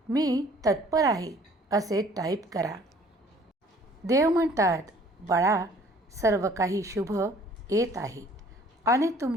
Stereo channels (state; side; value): normal; both; correlation 0.55